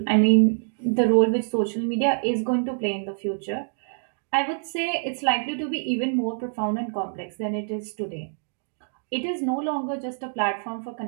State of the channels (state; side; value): silent; left; digital silence